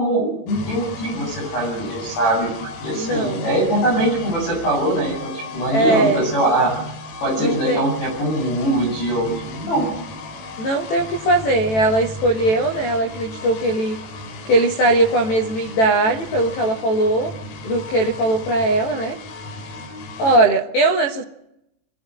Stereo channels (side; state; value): right; late; 18 ms